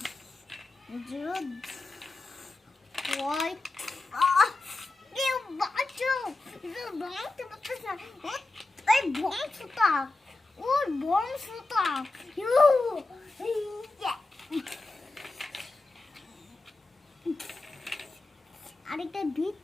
ভাঙতে পারতেছ না, ওই বংশটা, ওর বংশটা আরেকটা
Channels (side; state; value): right; quieter; 3.1 dB